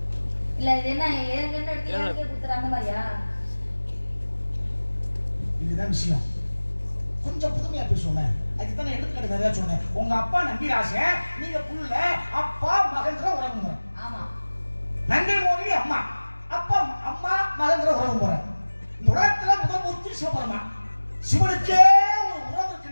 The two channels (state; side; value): inverted; both; correlation -1.00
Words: இல்ல இது என்ன ஏற்கனவே எடுத்து எனக்கே குத்துற அந்த மாதிரியா? இதுதான் விஷயம். கொஞ்சம் புதுமையா பேசுவோமே. அதுக்கு தான் எடுத்துக்கிட்டு நிறைய சொன்னேன். உங்க அப்பா நம்பிராசன், நீங்க புள்ள, அப்பா மகன்ற உறவு முறை. ஆமா. நங்கை மோகினி அம்மா, அப்பா அம்மா மகன்ற உறவு முறை. இந்த உலகத்துல முதல் மூர்த்தி சிவபெருமா. சிவனுக்கே ஒரு உறவு